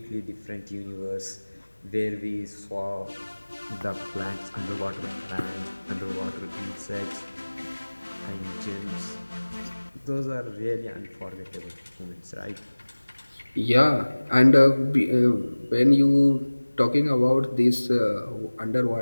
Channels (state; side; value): inverted; both; correlation -1.00